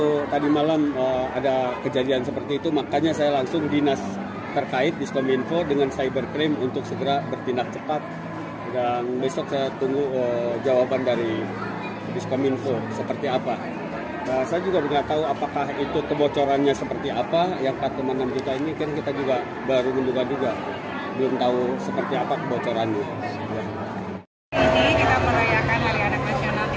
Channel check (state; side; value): identical; both; correlation 1.00